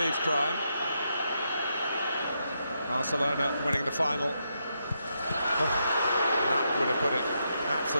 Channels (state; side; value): inverted; both; correlation -0.81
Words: crime. Barcelona winning the final. That would have put it